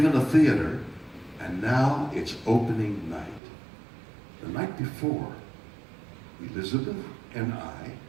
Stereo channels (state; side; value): drops out; left; at 3.4 s